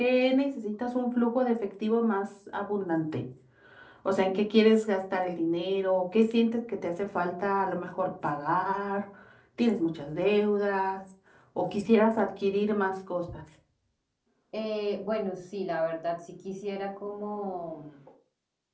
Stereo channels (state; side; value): identical; both; correlation 1.00